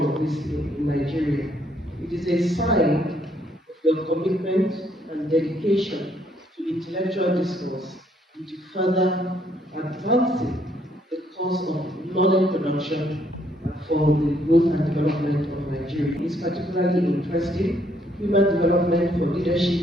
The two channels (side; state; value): both; normal; correlation 0.69